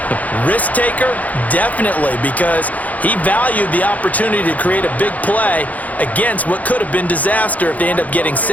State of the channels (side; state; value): right; late; 0.076 ms